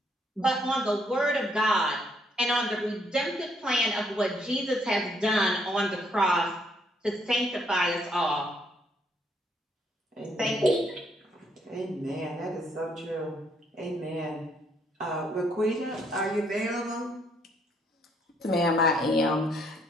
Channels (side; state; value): both; normal; correlation 0.70